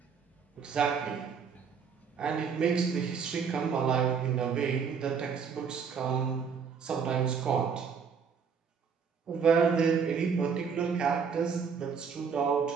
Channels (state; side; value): quieter; left; 6.2 dB